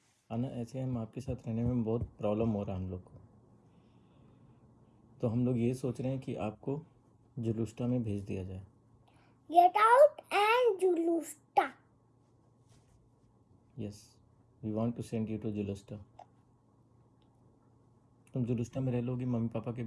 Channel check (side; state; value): both; identical; correlation 1.00